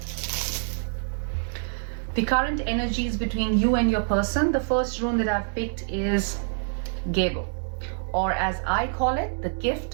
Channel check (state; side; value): silent; left; digital silence